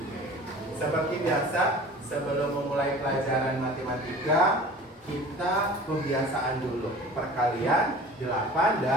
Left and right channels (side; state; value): both; normal; correlation 0.42